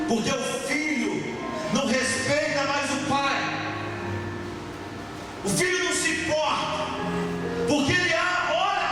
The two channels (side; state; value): both; identical; correlation 1.00